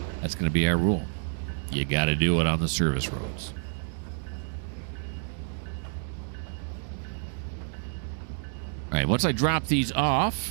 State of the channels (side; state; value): left; silent; 59 dB below the other